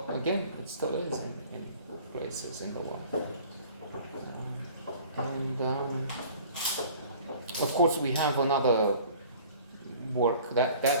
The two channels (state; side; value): inverted; both; correlation -0.48